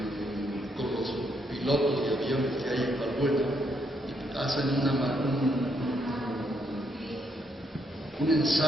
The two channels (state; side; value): normal; both; correlation 0.76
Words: con los pilotos de aviones que hay en Valbuena y hacen un